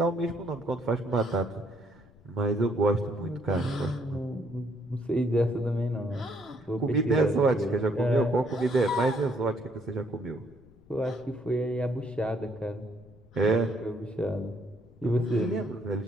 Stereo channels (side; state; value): left; noise; rumble, 25 dB below the sound